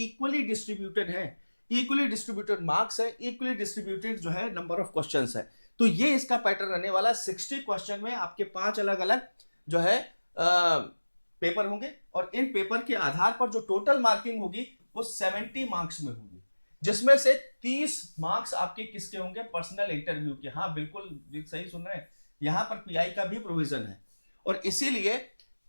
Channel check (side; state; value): both; inverted; correlation -1.00